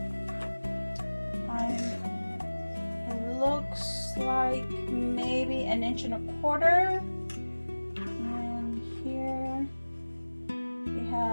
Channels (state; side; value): inverted; both; correlation -1.00